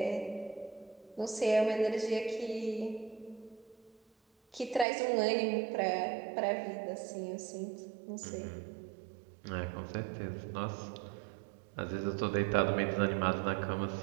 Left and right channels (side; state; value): left; drops out; at 4.9 s